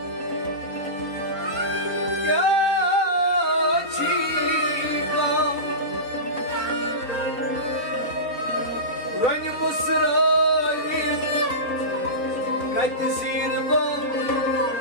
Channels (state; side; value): late; right; 4.0 ms